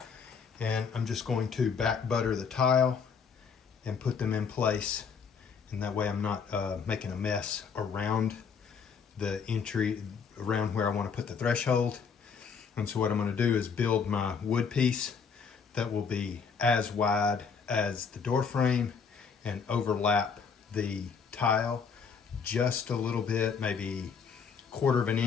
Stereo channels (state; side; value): quieter; right; 6.0 dB